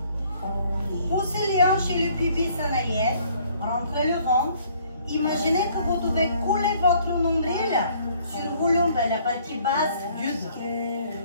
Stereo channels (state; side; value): inverted; both; correlation -0.60